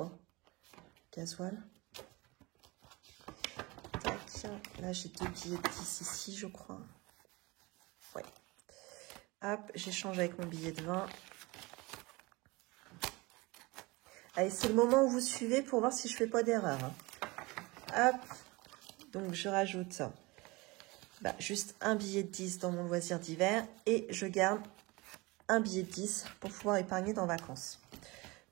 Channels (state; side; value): quieter; left; 23.8 dB